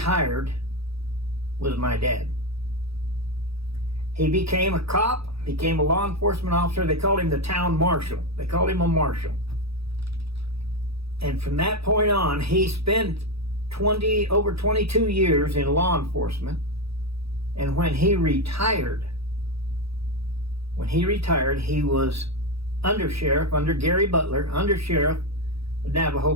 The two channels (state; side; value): late; left; 0.77 ms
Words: was my dad. He became a cop, became a law enforcement officer. They called him the town marshal. They called him a marshal. And from that point on, he spent over 22 years in law enforcement. And when he retired, he was undersheriff under Gary Butler, undersheriff of